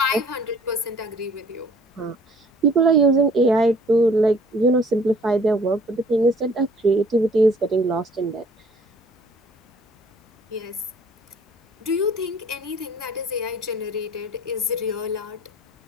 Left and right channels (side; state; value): both; normal; correlation 0.54